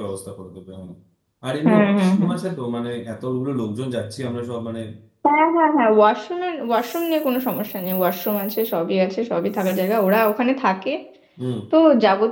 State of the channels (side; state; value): both; identical; correlation 1.00